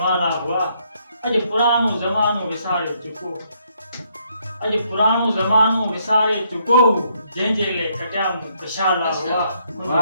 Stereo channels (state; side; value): inverted; both; correlation -0.72